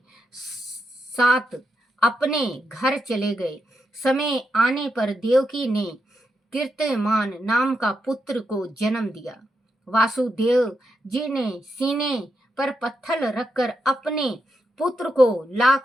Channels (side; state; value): both; normal; correlation 0.84